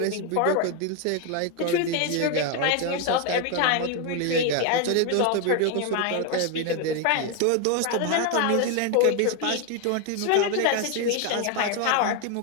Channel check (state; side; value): different; both; correlation 0.01